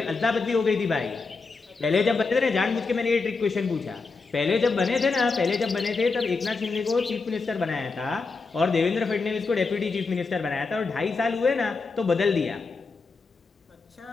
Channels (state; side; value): quieter; right; 4.2 dB